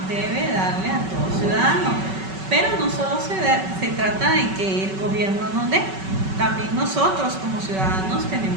debe darle a todo ciudadano. Pero no solo se trata de que el gobierno nos dé, también nosotros como ciudadanos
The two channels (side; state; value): left; late; 5.3 ms